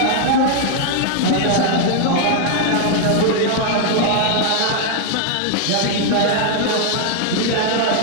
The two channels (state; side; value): different; both; correlation 0.00